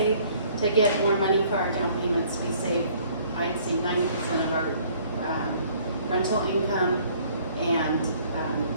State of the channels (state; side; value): inverted; both; correlation -0.58